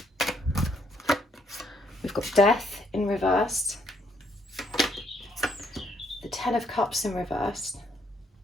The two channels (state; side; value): normal; both; correlation 0.71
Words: We've got Death in reverse, the Ten of Cups in reverse,